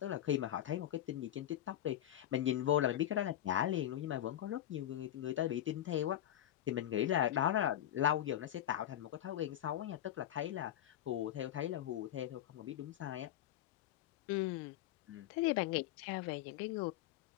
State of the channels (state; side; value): quieter; right; 12.0 dB